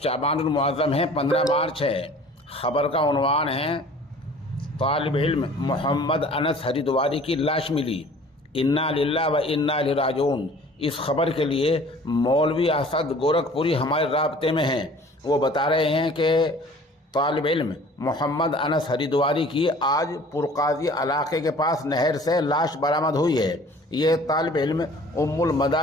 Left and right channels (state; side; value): normal; both; correlation 0.49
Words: المعظم ہے، 15 مارچ ہے۔ خبر کا عنوان ہے طالب علم محمد انس ہریدواری کی لاش ملی، انا للہ و انا الیہ راجعون۔ اس خبر کے لیے مولوی اسد گورکھپوری ہمارے رابطے میں ہیں۔ وہ بتا رہے ہیں کہ طالب علم محمد انس ہریدواری کی آج پرقاضی علاقے کے پاس نہر سے لاش برآمد ہوئی ہے۔ یہ طالب علم ام